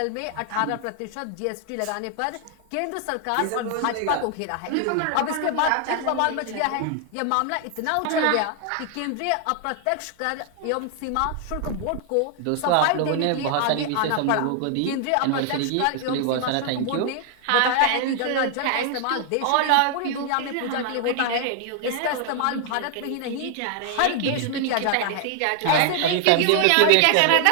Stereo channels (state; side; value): different; both; correlation 0.00